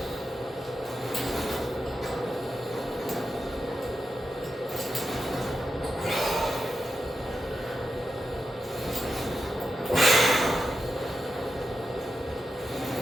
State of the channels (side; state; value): both; normal; correlation 0.89